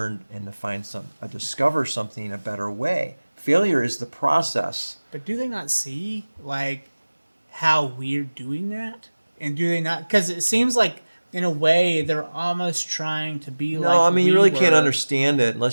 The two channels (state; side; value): inverted; both; correlation -1.00